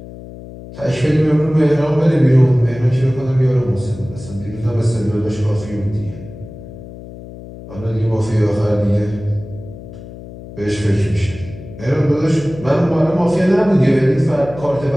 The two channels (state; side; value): noise; left; hum, 15 dB below the sound